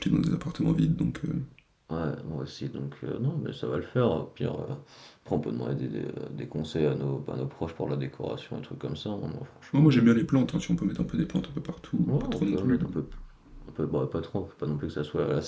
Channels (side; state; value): both; identical; correlation 1.00